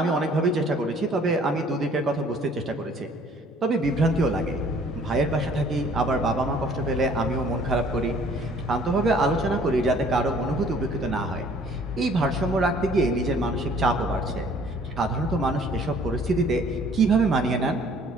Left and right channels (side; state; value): both; normal; correlation 0.56